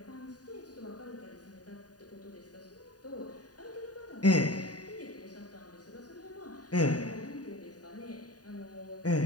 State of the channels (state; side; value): late; right; 0.68 ms